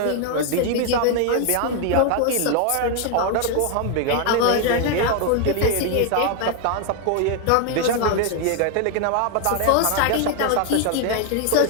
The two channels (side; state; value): both; different; correlation 0.01